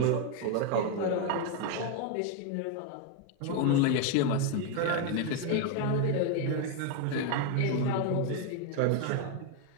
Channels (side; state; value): both; different; correlation 0.01